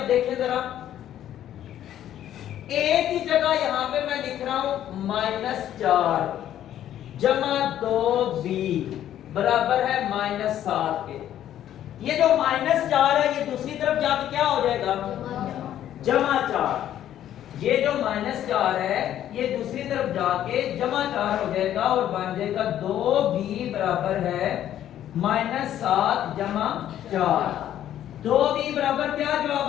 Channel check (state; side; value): quieter; right; 11.4 dB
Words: देखिए जरा, a की जगह यहां पे मैं लिख रहा हूं -4 जमा 2b बराबर है -7 के। ये जो -4 है ये दूसरी तरफ जाके क्या हो जाएगा, +4। ये जो -4 है ये दूसरी तरफ जाके +4 हो जाएगा और बन जाएगा 2b बराबर है -7 + 4। 2b बराबर क्या